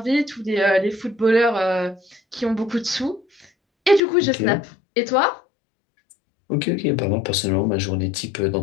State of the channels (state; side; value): drops out; right; at 4.0 s